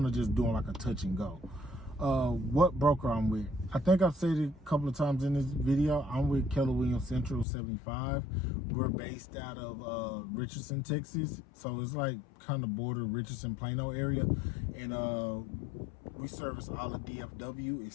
of just doing like a touch and go. What broker I'm with? I think I've said it a couple of times in this video. I'm with Keller Williams Central 75. We're based out of Richardson, Texas. So it's like kind of border Richardson, Plano area. And we service all of DFW.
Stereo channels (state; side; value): drops out; right; at 7.5 s